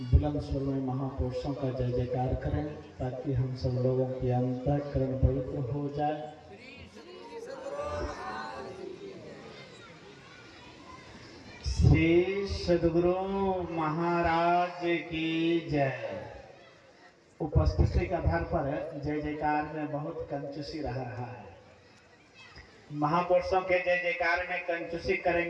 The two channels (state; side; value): identical; both; correlation 1.00